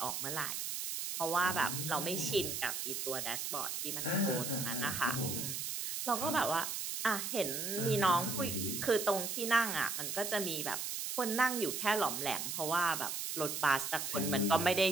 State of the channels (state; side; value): noise; right; hiss, 3 dB below the sound